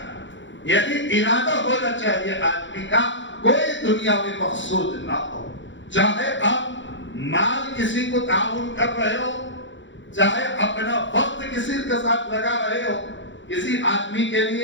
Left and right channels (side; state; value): right; late; 0.54 ms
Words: یہی ارادہ ہونا چاہیے آدمی کا. کوئی دنیاوی مقصود نہ ہو. چاہے آپ مال کسی کو تعاون کر رہے ہو، چاہے اپنا وقت کسی کے ساتھ لگا رہے ہو کسی آدمی کے